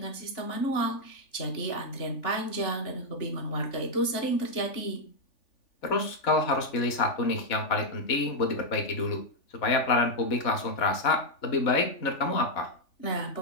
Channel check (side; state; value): right; late; 3.5 ms